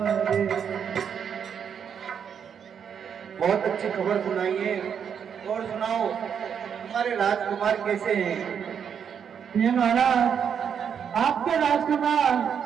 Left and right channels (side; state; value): left; quieter; 7.6 dB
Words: बहुत अच्छी खबर सुनाई है। और सुनाओ हमारे राजकुमार कैसे हैं? ये महाराज आपके राजकुमार